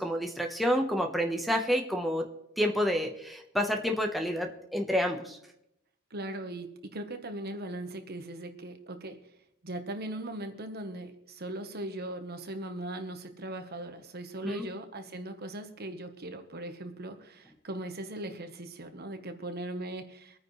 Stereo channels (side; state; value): both; normal; correlation 0.67